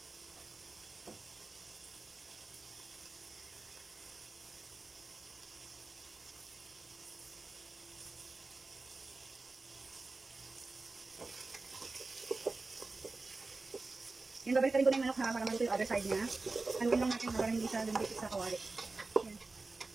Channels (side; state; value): left; quieter; 3.6 dB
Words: Yan, babalik rin ko na yung manok ha, para maluto yung other side niya. Haluin lang natin para hindi siya lumipit sa kawali. Yan.